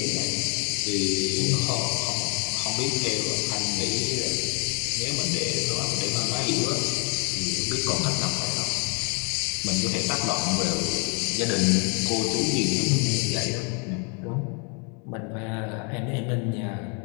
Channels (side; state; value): right; quieter; 35.5 dB